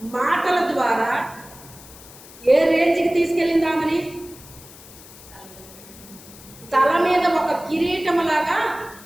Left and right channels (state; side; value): noise; left; hiss, 19 dB below the sound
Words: మాటల ద్వారా ఏ రేంజ్కి తీసుకెళ్ళింది ఆమెని? తల మీద ఒక కిరీటంలాగా